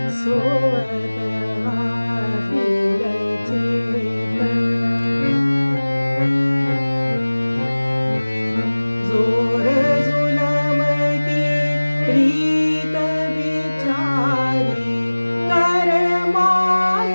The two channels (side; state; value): both; inverted; correlation -1.00